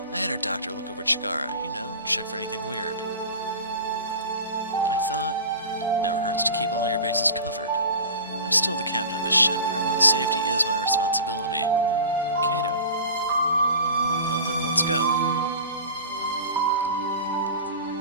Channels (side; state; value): both; inverted; correlation -0.36